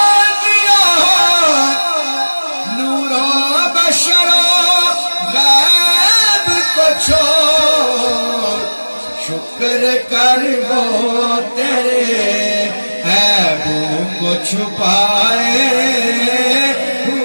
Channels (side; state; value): both; inverted; correlation -1.00